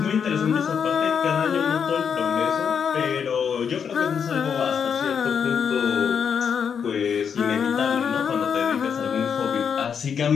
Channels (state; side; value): quieter; right; 7.1 dB